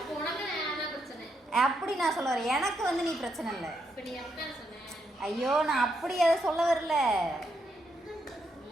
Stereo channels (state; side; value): normal; both; correlation 0.79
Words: உனக்கு நான் தான் பிரச்சனை. அப்படி நான் சொல்ல வரேன். எனக்கு வந்து நீ பிரச்சனை இல்லை. இப்ப நீ எப்படி சொன்ன? ஐயோ நான் அப்படி அதை சொல்ல வரல.